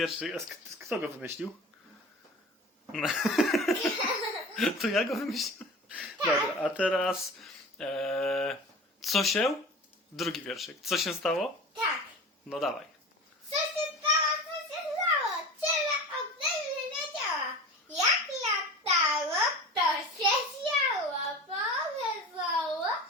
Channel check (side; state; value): both; normal; correlation 0.35